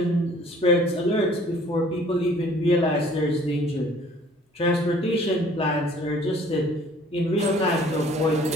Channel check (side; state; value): both; normal; correlation 0.54